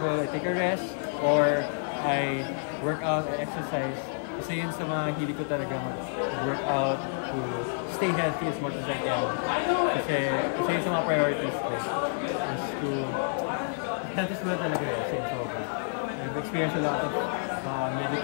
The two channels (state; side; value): silent; right; digital silence